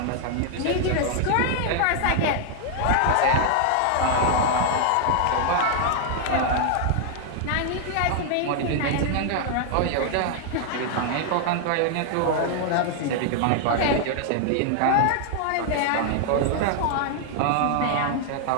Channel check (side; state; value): both; different; correlation 0.00